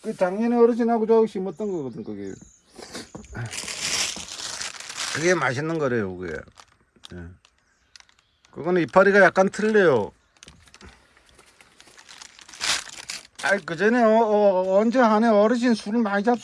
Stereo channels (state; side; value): identical; both; correlation 1.00